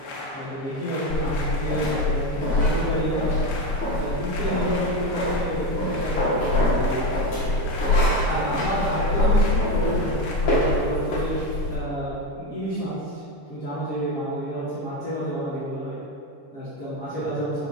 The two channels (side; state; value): right; late; 6.7 ms